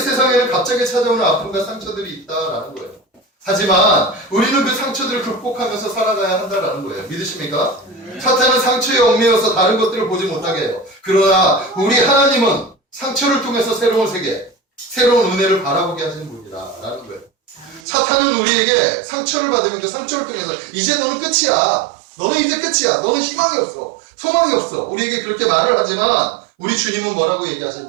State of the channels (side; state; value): left; drops out; at 17.8 s